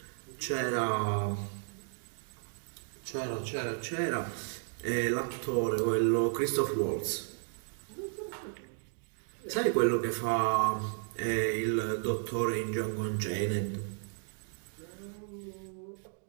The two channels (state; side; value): silent; left; digital silence